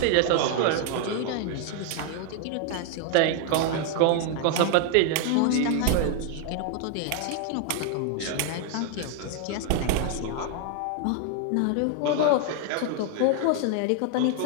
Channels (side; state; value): both; different; correlation 0.00